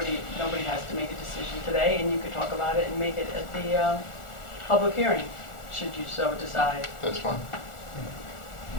has to make a decision today, and you could talk about it and make it at the public hearing, should you so decide. That's fine.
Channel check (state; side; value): late; right; 1.4 ms